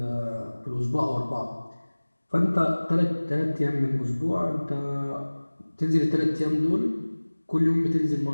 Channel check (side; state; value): both; inverted; correlation -1.00